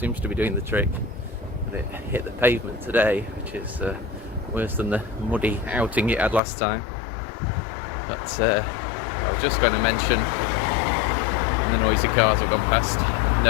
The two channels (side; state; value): right; drops out; at 6.4 s